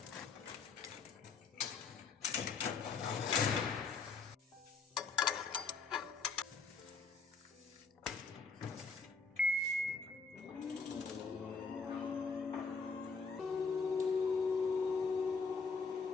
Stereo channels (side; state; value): right; quieter; 4.7 dB